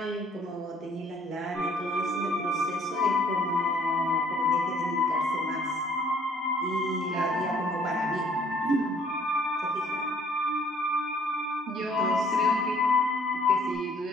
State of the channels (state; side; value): normal; both; correlation 0.60